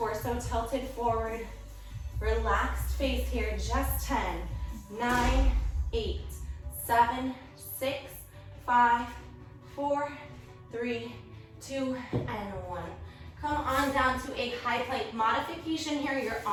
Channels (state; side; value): identical; both; correlation 1.00